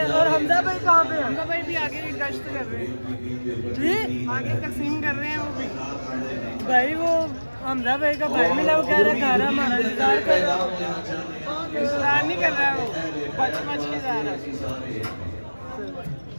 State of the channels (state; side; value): inverted; both; correlation -1.00